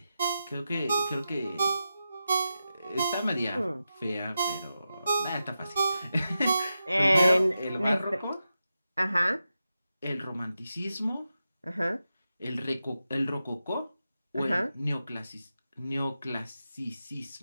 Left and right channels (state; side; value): inverted; both; correlation -0.90